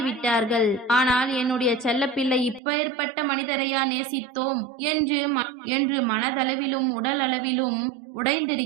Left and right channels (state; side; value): drops out; left; at 2.6 s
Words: ஆனால் என்னுடைய செல்ல பிள்ளை இப்பேற்பட்ட மனிதரையா நேசித்தோம் என்று மனதளவிலும் உடல் அளவிலும்